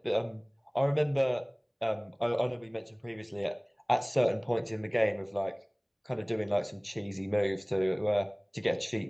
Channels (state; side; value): identical; both; correlation 1.00